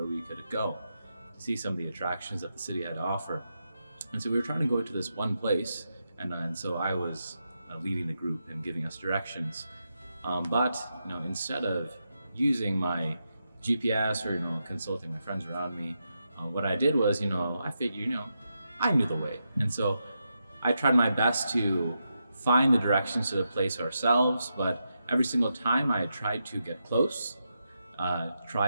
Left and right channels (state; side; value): inverted; both; correlation -0.85